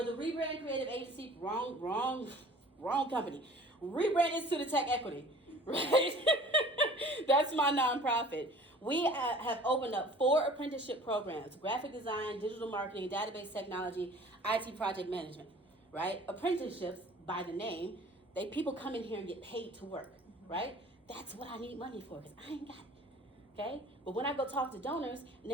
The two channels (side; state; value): both; normal; correlation 0.47